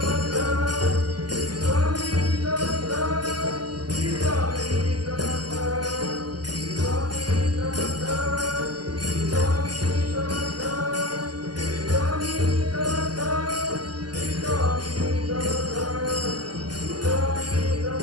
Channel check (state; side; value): late; left; 0.70 ms